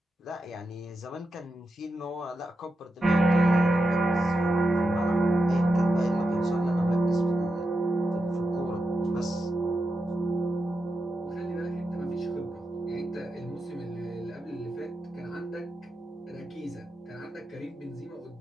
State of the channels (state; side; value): normal; both; correlation 0.88